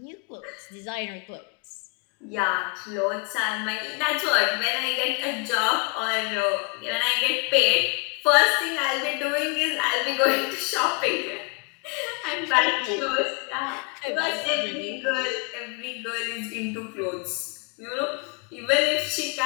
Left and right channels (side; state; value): right; quieter; 31.1 dB